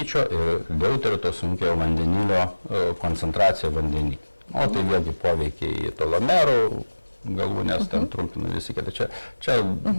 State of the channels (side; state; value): both; inverted; correlation -1.00